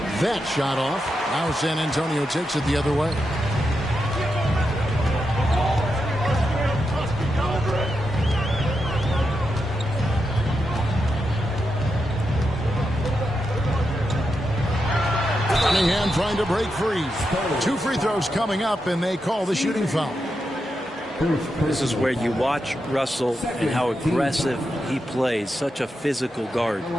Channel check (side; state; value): both; normal; correlation 0.86